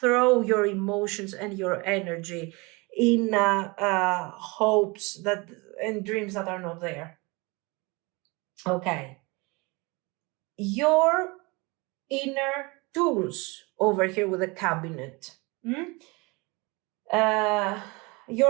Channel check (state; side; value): quieter; left; 26.6 dB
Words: your emotions and your energy in hopes that and dreams that are not there. Okay. Your inner tools over here with the cabinet.